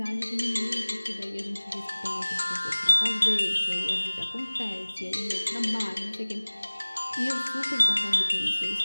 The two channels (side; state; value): both; inverted; correlation -1.00